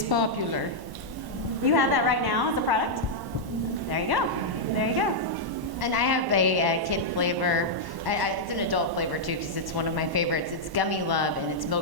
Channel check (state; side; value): late; left; 1.1 ms